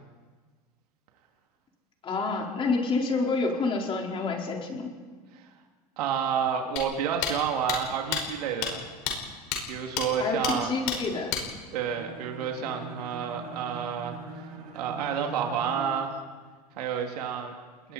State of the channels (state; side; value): normal; both; correlation 0.35